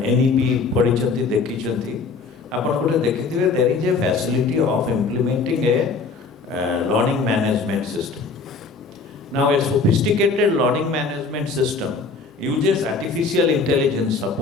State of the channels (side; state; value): right; quieter; 4.3 dB